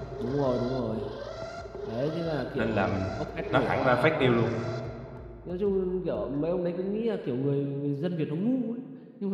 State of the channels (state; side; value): identical; both; correlation 1.00